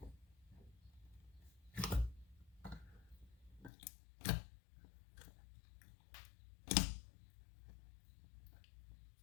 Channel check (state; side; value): drops out; right; at 3.7 s